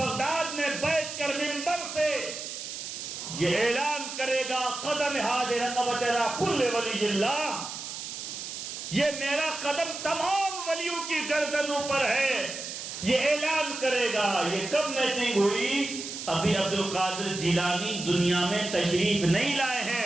میں بیٹھ کر منبر سے یہ اعلان کرے گا قدم حاضر رقبت را کل ولی اللہ، یہ میرا قدم تمام ولیوں کی گردنوں پر ہے. یہ اعلان کرے گا. یہ کب میٹنگ ہوئی؟ ابھی عبد القادر جیلانی دنیا میں تشریف نہیں لائے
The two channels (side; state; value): right; noise; hiss, 8 dB below the sound